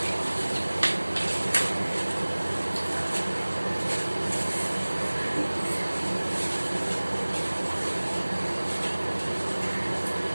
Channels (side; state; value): both; inverted; correlation -1.00